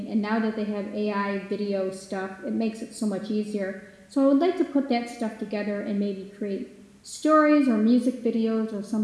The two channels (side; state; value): both; identical; correlation 1.00